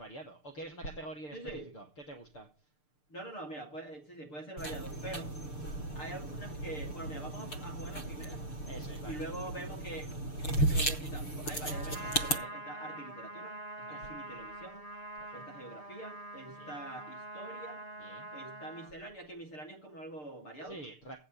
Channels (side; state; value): right; late; 6.7 ms